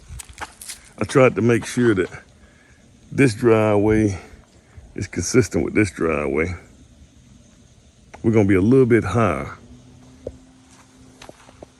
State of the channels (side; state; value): both; identical; correlation 1.00